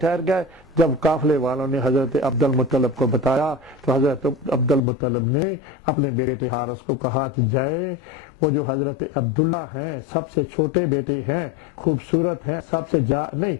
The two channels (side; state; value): right; drops out; at 4.8 s